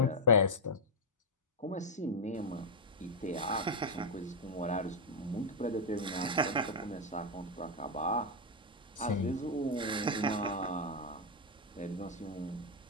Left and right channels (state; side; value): normal; both; correlation 0.00